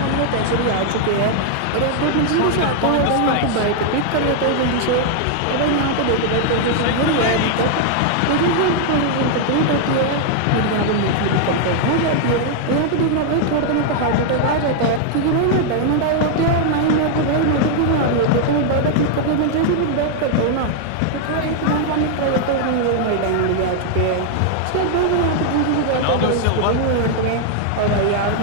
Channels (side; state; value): both; different; correlation 0.00